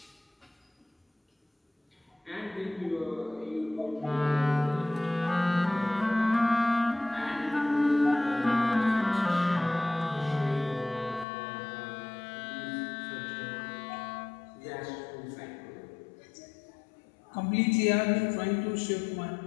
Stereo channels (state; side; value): drops out; right; at 11.2 s